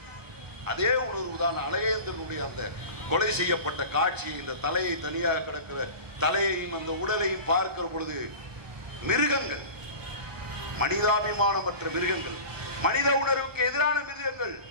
அதே உணர்வு தான் அழகேந்திரனுடைய அந்த கொலை செய்யப்பட்ட காட்சியை, இந்த தலையை தனியாக கிடக்கிற தலையையும் அந்த உடலையும் பார்க்கிற பொழுது மிருகங்கள், மனிதாபிமானமற்ற மிருகங்கள், மனித உணர்வுக்கு எதிரான மிருகங்கள்.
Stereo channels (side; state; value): left; late; 1.1 ms